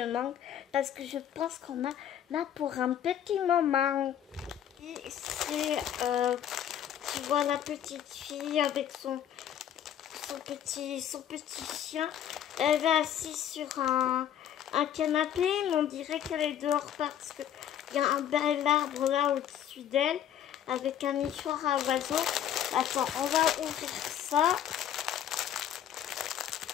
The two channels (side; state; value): right; quieter; 10.1 dB